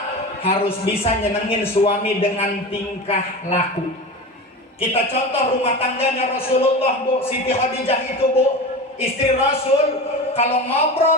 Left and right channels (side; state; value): both; normal; correlation 0.29